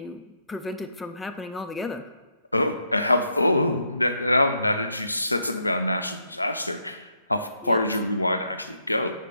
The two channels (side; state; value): both; inverted; correlation -0.76